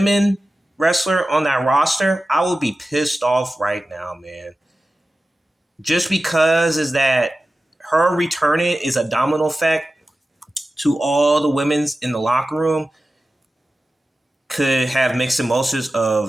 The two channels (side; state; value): both; normal; correlation 0.94